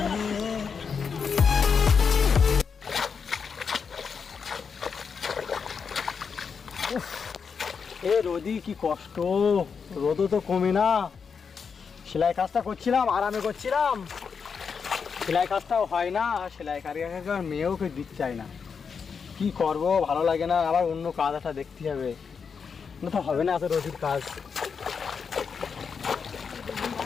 এ রোদি কি কষ্ট, রোদও তো কমে না। সেলাই কাজটা করছিলাম, আরামে করছিলাম, সেলাই কাজটাও হয় না। সেলাই কারিগরকে মেয়েও কেউ দিতে চায় না। কি করব, ভালো লাগে না। আবার অন্য কাজ একটা দেখতে হবে, না তো হবে না এত রোদির কাজ।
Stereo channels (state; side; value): quieter; right; 6.0 dB